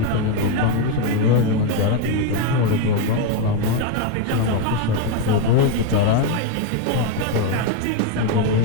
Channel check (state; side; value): different; both; correlation 0.02